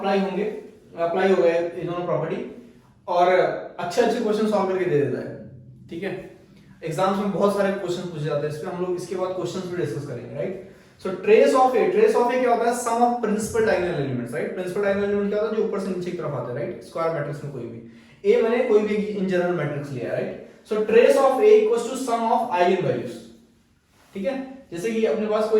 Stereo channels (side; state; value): both; identical; correlation 1.00